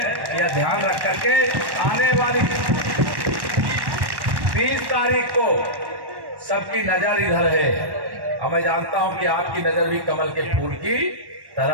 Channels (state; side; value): late; left; 1.1 ms